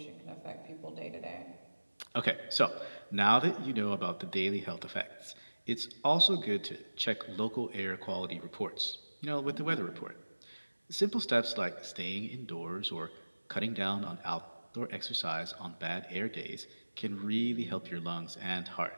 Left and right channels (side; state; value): both; inverted; correlation -1.00